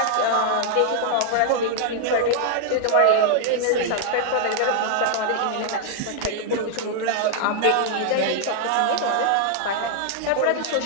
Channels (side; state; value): both; different; correlation 0.00